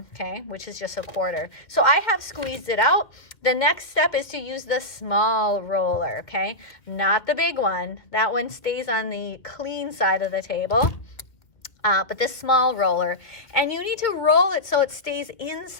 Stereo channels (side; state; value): right; late; 1.9 ms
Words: okay, which is just a quarter. So I have squeezed it out. The next step is to use the small roller, okay, not the big one. That one stays on the clean side of the table. But this small roller, and you need to roll it so it stays